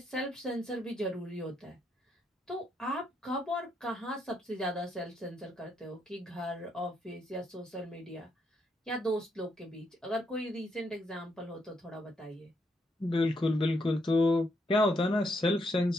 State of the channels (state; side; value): normal; both; correlation 0.77